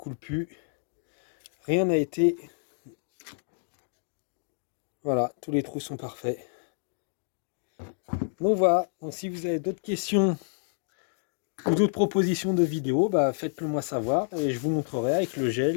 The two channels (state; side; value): silent; right; digital silence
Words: plus. Rien n'a été... Voilà, tous les trous sont parfaits. Donc voilà, donc si vous avez d'autres questions ou d'autres propositions de vidéos, bah faites-le moi savoir et je vous montrerai avec le